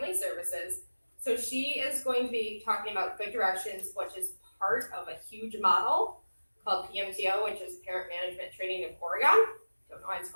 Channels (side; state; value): both; inverted; correlation -1.00